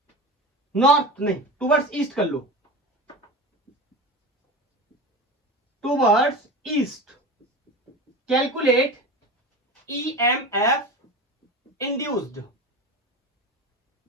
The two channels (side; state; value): both; normal; correlation 0.29